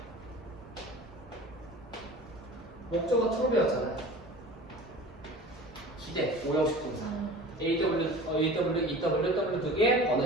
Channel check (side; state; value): both; normal; correlation 0.39